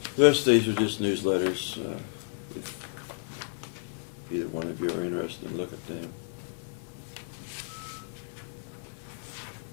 The rest of these are just newsletters. If either one of you are interested, look at them.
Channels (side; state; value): right; silent; 57 dB below the other